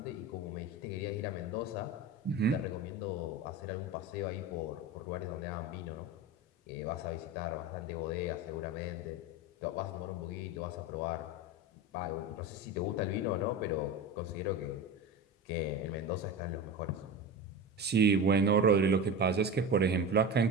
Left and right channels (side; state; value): both; normal; correlation 0.27